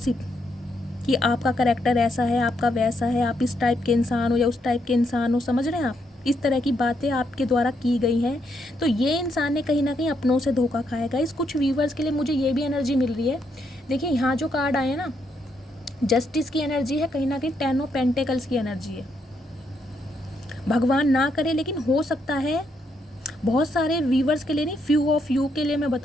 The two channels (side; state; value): both; normal; correlation 0.77